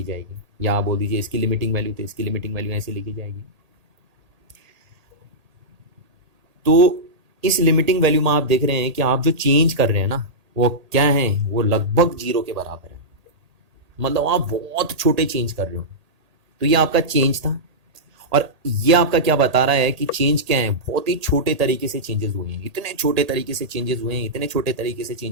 जाएगी, या आप बोल दीजिए इसकी लिमिटिंग वैल्यू, तो इसकी लिमिटिंग वैल्यू ऐसे लिखी जाएगी। तो इस लिमिटिंग वैल्यू में आप देख रहे हैं कि आप जो चेंज कर रहे हैं ना, वो क्या है, वो लगभग जीरो के बराबर है। मतलब आप बहुत छोटे चेंज कर रहे हो। तो ये आपका चेंज था, और ये आपका क्या बता रहा है कि चेंज क्या है, बहुत ही छोटे तरीके से चेंजेस हुए हैं, इतने छोटे तरीके से चेंजेस हुए हैं, इतने छोटे तरीके से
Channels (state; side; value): late; left; 1.8 ms